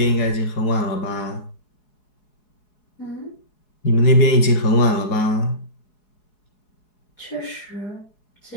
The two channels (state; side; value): late; right; 4.7 ms